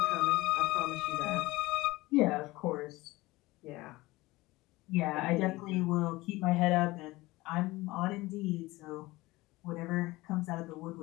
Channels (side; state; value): right; quieter; 20.2 dB